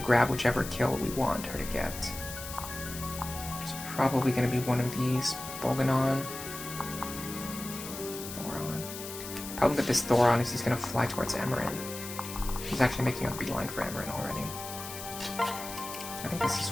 whichever kill we want her to get. It's probably going to be one of these. Bolganon. Thoron. Problem with this Thoron is he's going to fly towards Emmeryn. He's actually making a beeline for Emmeryn already. I think this is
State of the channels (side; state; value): left; noise; hiss, 10 dB below the sound